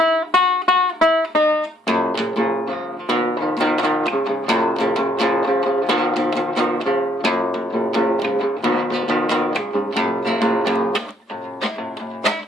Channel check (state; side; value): normal; both; correlation 0.71